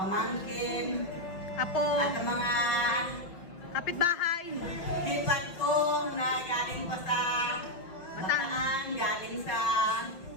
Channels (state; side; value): late; right; 5.9 ms